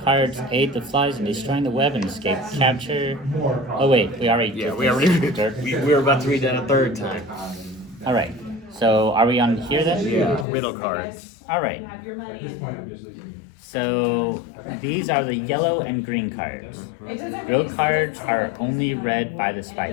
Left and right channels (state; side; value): drops out; right; at 10.5 s